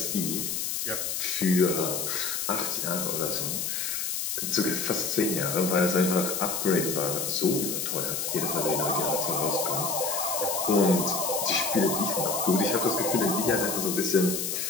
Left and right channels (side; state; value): left; noise; hiss, 2 dB below the sound